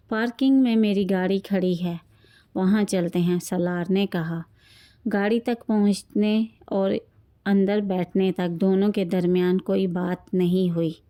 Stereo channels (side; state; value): both; identical; correlation 1.00